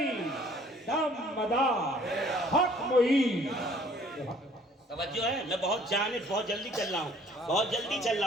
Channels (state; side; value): normal; both; correlation 0.56